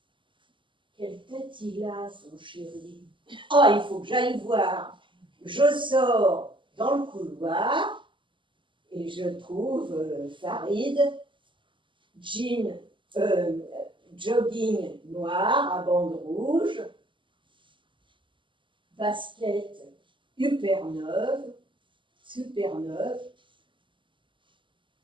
Quelle tête il a, son chéri? Oh, il faut que j'aille voir. Je sors dans le couloir et je trouve Farid, jean, jogging noir à bandes rouges, basket super neuve.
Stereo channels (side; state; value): left; late; 0.24 ms